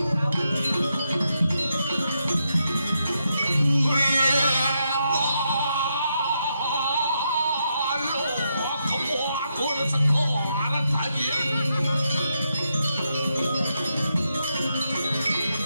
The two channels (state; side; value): inverted; both; correlation -0.82